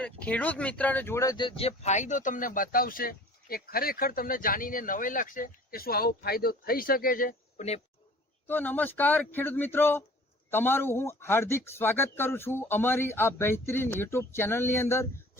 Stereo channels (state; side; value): normal; both; correlation 0.48